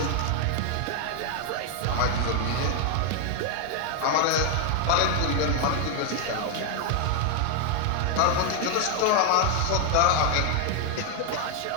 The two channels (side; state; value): both; different; correlation 0.00